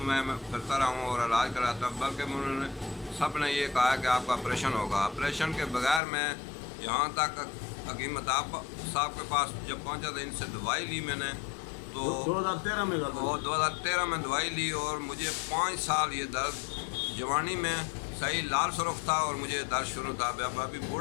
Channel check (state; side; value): drops out; right; at 6.0 s